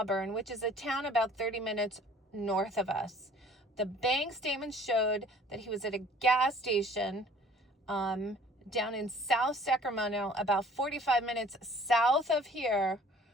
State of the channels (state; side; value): normal; both; correlation 0.52